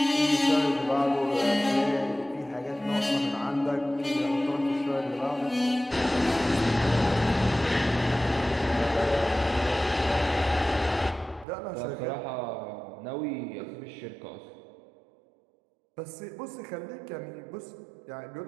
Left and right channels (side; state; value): left; drops out; at 11.5 s